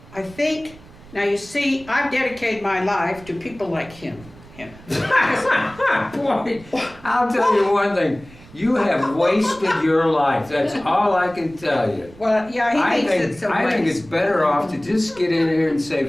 I think, now you see, I've dedicated my life to people like him. Boy, I'll tell you one thing. You have wasted your life. That's all I can tell you. Well, yeah, he thinks it's a I think waste. it's better off to just get in here and say,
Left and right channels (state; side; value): noise; right; rumble, 22 dB below the sound